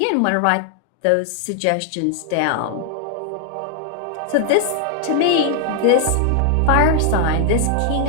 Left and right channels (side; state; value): both; different; correlation 0.00